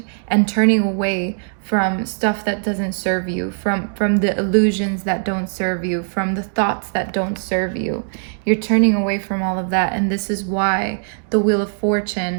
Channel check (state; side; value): silent; left; digital silence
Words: and turning away from stuff that doesn't serve you, from the illusions that don't serve you, from the thoughts that don't serve you. You're turning away from all of that. And this is why the Wheel of